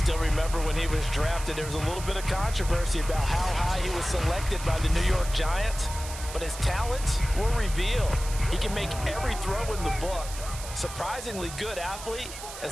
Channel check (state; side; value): noise; right; hiss, 11 dB below the sound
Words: remember when he was drafted, there was a little bit of controversy about how high he was selected by the New York Giants, but his talents were revealed. He can make every throw in the book. Surprisingly good athlete.